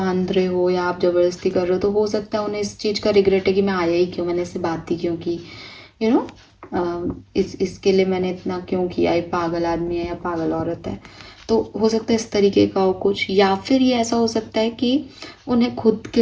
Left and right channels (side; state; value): both; identical; correlation 1.00